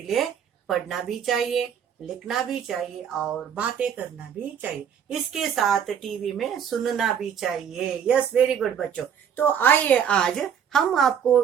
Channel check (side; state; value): left; quieter; 8.1 dB